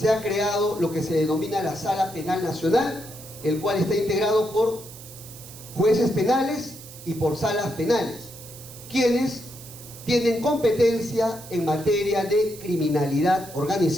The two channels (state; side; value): noise; right; hiss, 16 dB below the sound